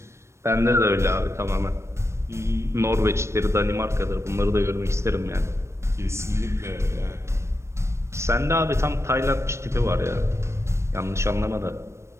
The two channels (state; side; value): late; left; 0.13 ms